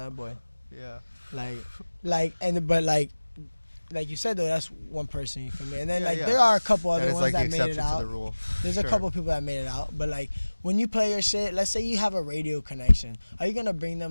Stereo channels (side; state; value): both; inverted; correlation -1.00